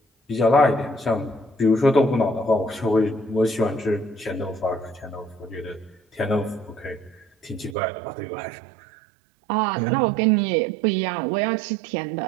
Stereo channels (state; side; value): drops out; left; at 7.8 s